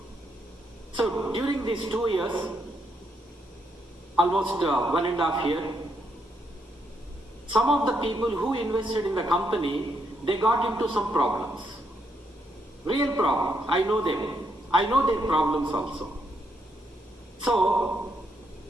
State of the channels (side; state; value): both; normal; correlation 0.77